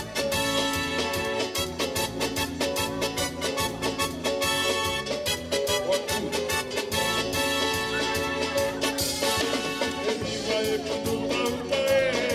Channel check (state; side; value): identical; both; correlation 1.00